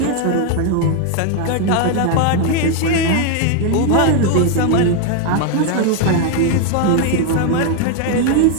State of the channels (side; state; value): both; different; correlation 0.01